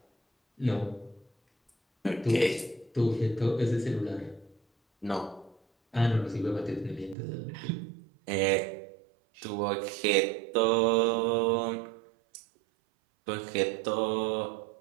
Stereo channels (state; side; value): drops out; left; at 7.2 s